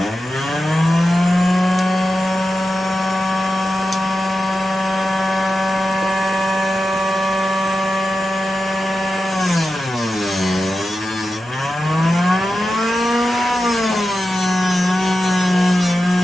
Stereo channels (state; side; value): normal; both; correlation 0.91